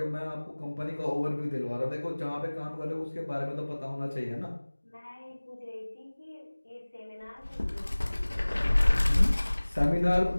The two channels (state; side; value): inverted; both; correlation -1.00